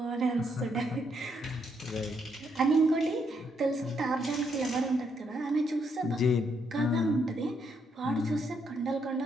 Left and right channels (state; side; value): normal; both; correlation 0.75